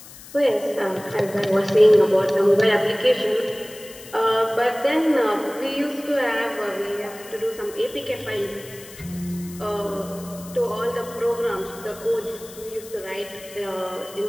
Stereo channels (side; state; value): left; noise; hiss, 18 dB below the sound